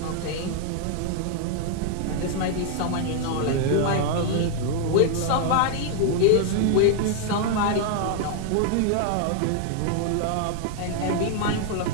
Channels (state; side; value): different; both; correlation 0.00